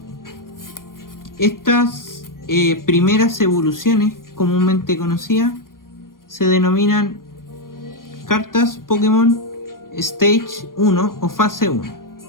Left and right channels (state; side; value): late; right; 0.91 ms